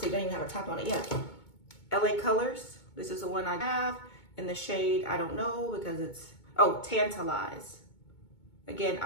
don't even have a top on it yet. LA Colors. This is the one I have in the shade, I don't know, because it's, oh, Tantalize. Again,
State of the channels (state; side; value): late; right; 2.2 ms